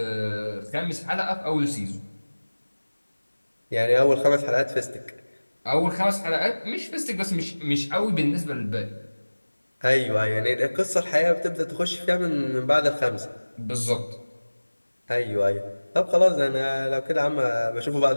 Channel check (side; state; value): both; inverted; correlation -1.00